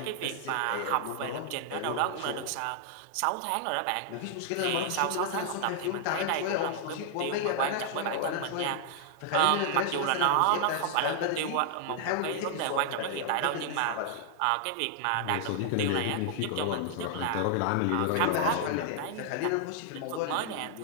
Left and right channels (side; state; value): both; different; correlation 0.00